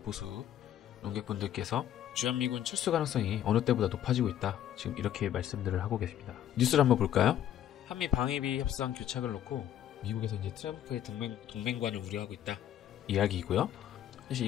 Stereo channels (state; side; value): quieter; right; 11.1 dB